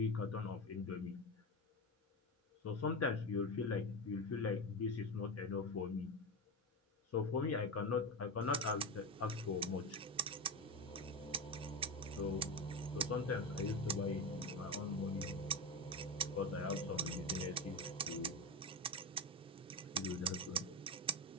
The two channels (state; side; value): normal; both; correlation 0.18